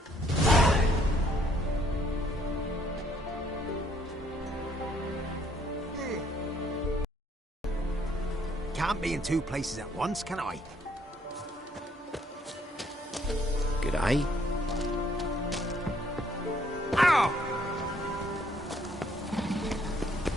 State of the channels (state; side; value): normal; both; correlation 0.66